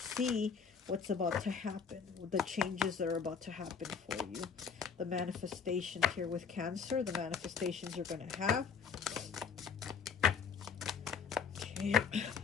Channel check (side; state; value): right; quieter; 6.1 dB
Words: what's about to happen, the changes that are about to happen for you. The manifestations here with Cancer, the manifestations you're going to have. Okay.